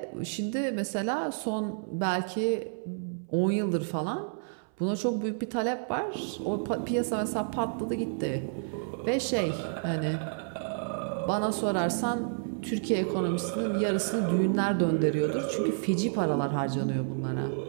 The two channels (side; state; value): left; silent; 58 dB below the other